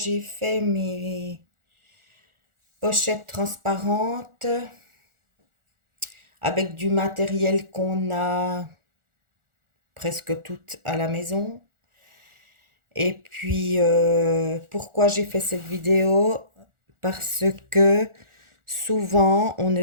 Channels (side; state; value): left; late; 1.4 ms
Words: fait mes pochettes transparentes avec du matériel qu'on a presque toutes à la maison. Et puis, pourquoi j'ai fait cette vidéo? Parce que souvent, on